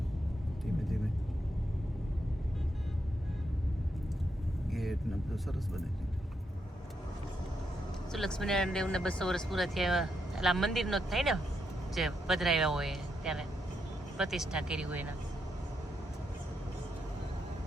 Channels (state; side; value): normal; both; correlation 0.81